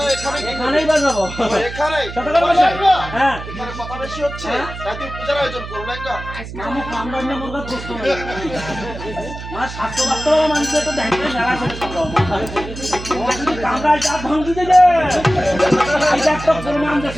এখানে? এখানেই বাজাবো। ও, এখানেই? সতর্ক ও, বসে। লেঙ্গা, হ্যাঁ। এখানে কথা বেশি হচ্ছে, তাই তুমি পূজার আয়োজন করো লেঙ্গা। মামু কামড়ান না মুরগা প্রশ্ন নেই। মা স্বাস্থ্য বাস্তব মানুষের তো দেখতে মেলা করে কামড়ায় যা ভাঙ্গি দেবে। এটা একটা প্রমাণ দেশ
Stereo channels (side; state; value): right; noise; hum, 11 dB below the sound